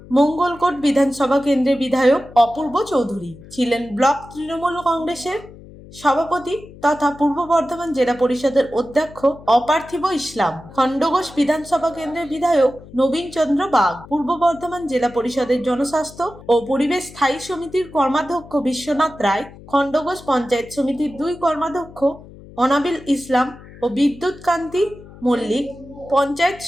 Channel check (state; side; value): noise; left; hum, 19 dB below the sound